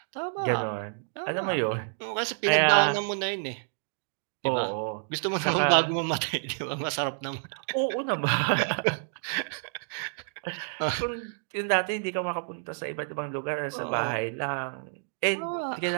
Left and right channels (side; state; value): left; silent; digital silence